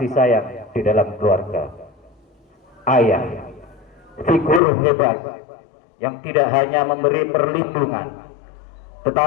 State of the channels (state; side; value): drops out; right; at 4.6 s